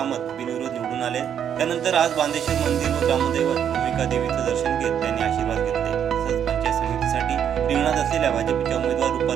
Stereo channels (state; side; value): quieter; left; 8.9 dB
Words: बिनविरोध निवडून आले। त्यानंतर आज बांदेश्वर मंदिर व ग्रामदैवत भूमिका देवीचं दर्शन घेत त्यांनी आशीर्वाद घेतले। तसंच पंचायत समितीसाठी रिंगणात असलेल्या भाजपच्या उमेदवार